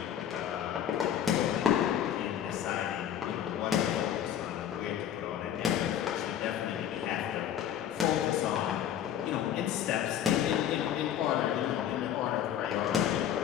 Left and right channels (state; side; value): quieter; right; 10.1 dB